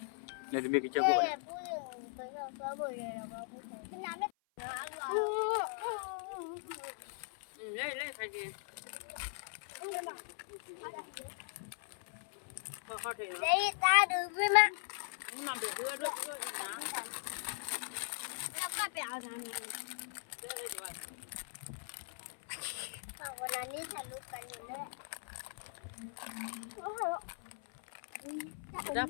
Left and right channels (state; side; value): silent; right; 52 dB below the other